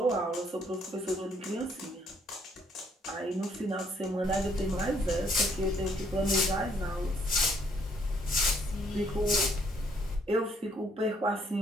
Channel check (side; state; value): both; normal; correlation 0.66